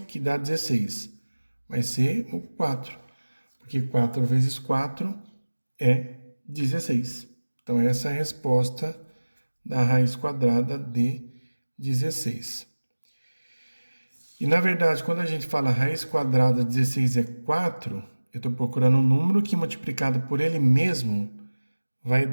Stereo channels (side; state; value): both; inverted; correlation -1.00